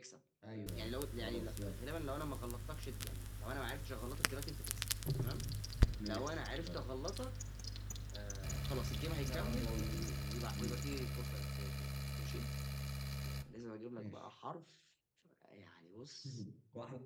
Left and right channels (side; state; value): both; identical; correlation 1.00